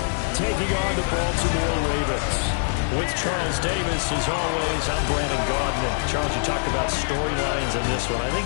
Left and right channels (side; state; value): right; silent; digital silence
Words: taking on the Baltimore Ravens. With Charles Davis, as always, I'm Brandon Gaudin. Charles, you talked about storylines in this one. I